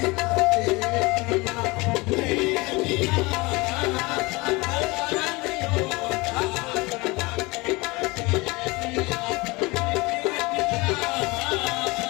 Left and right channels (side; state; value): right; quieter; 24.1 dB